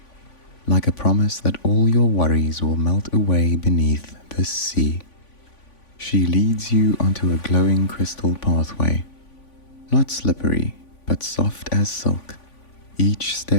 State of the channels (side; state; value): right; late; 3.5 ms